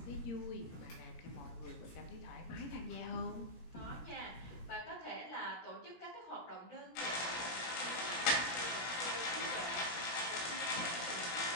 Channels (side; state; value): right; late; 17 ms